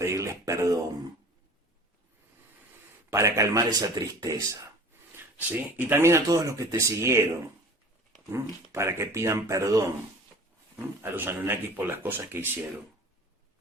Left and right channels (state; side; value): normal; both; correlation 0.42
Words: perdón, para calmar esa tristeza, ¿sí? Y también a todos los que te siguieron, para que pidan perdón a los Anunnakis por las cosas que hicieron.